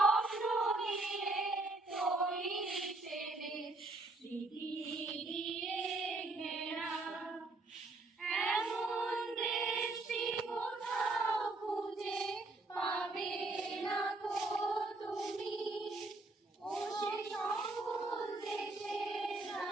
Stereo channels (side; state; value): left; quieter; 3.1 dB